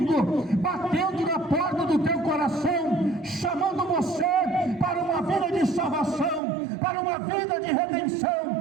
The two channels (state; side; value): drops out; left; at 6.4 s